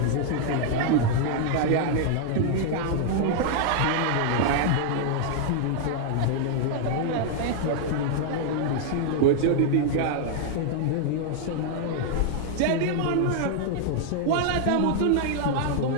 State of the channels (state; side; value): different; both; correlation -0.01